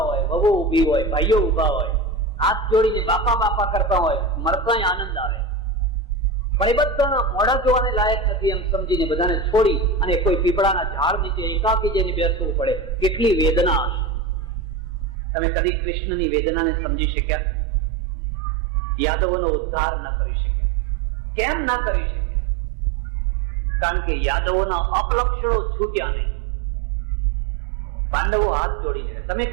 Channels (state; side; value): drops out; left; at 15.2 s